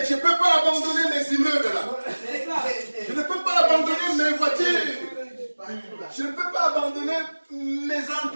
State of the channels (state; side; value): inverted; both; correlation -1.00